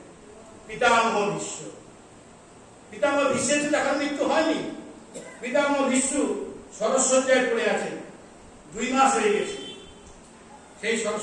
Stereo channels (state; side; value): identical; both; correlation 1.00